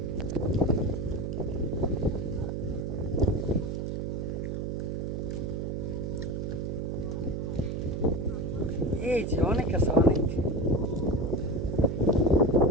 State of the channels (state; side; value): noise; right; hum, 2 dB below the sound